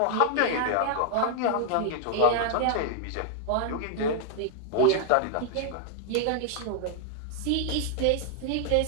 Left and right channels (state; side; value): different; both; correlation 0.00